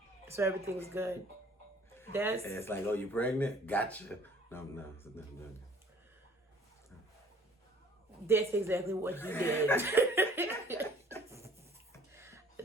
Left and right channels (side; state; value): both; normal; correlation 0.55